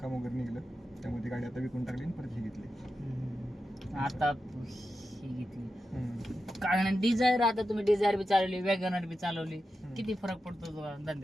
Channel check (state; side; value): normal; both; correlation 0.90